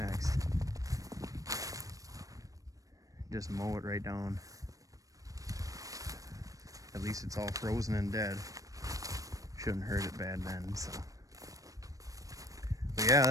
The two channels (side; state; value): left; late; 0.16 ms